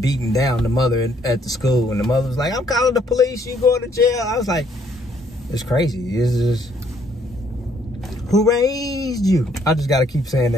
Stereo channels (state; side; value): normal; both; correlation 0.67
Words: beating down the mother at the school, and the mother was like, "I'm calling the police. You going to jail?" I was like, "It's crazy. It's just who raised you?" I just gotta keep saying